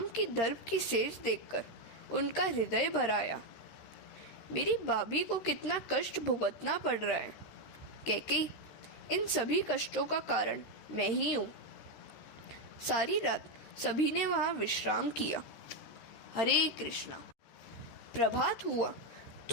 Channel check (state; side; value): late; right; 13 ms